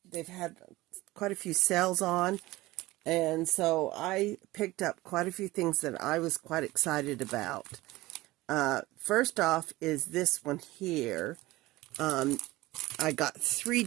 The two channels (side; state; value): left; quieter; 19.0 dB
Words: they've had quite a few sales on, and so I picked up quite a few things that I was quite excited about. First off is this one here. I got three